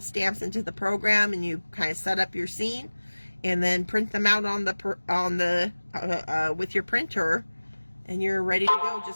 stamps into the program and you kind of set up your scene and then print them out with your printer, and you're ready to go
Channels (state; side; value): inverted; both; correlation -1.00